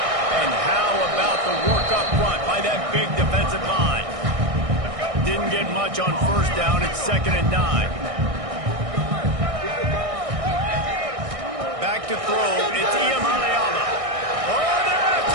And how about the work up front by that big defensive line? Didn't get much on first down. It's 2nd and 9. Back to throw. It's Iyamaleama. Oh, they're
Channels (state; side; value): late; left; 1.6 ms